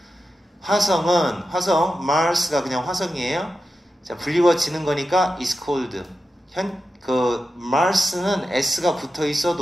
화성 Mars가 그냥 화성이에요. 자, 불리워지는 거니까 is cold. Mars는 S가 붙어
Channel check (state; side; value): normal; both; correlation 0.91